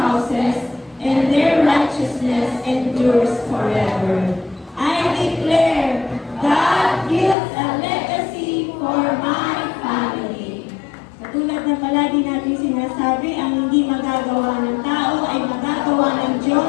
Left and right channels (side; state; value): right; drops out; at 7.4 s